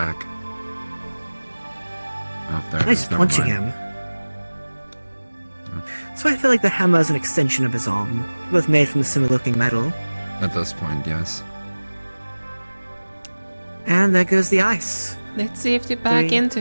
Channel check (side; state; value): both; inverted; correlation -1.00